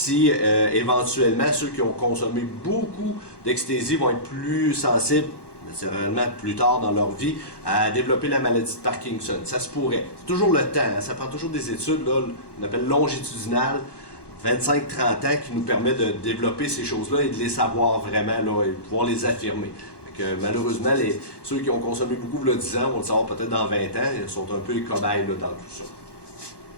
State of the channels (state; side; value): late; right; 1.2 ms